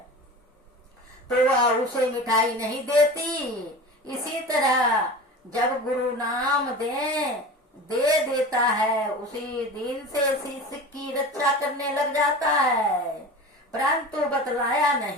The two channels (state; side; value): normal; both; correlation 0.33